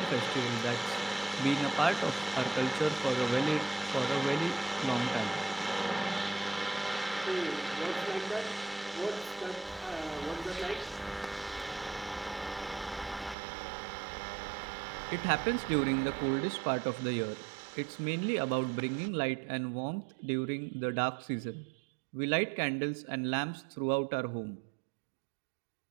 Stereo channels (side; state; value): left; drops out; at 13.4 s